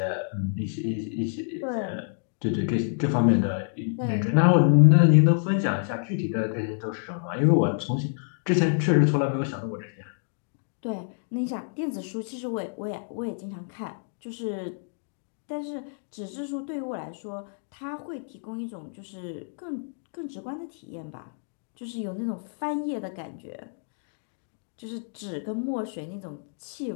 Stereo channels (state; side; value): silent; right; digital silence